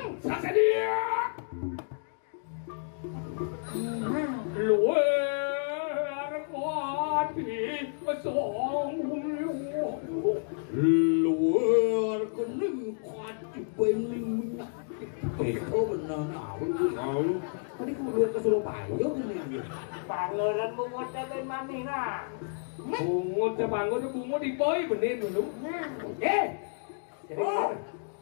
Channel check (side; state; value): right; silent; digital silence